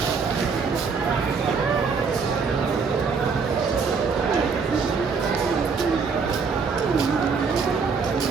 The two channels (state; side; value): quieter; left; 5.2 dB